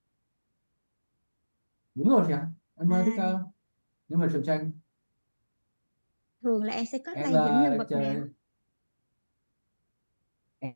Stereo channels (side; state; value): both; inverted; correlation -1.00